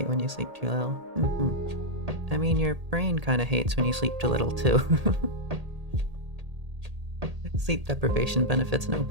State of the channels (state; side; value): late; left; 1.8 ms